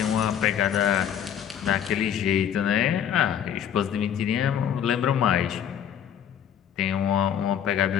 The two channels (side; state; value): right; quieter; 9.2 dB